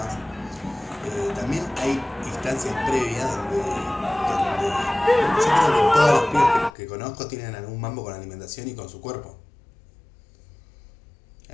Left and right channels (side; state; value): right; drops out; at 6.7 s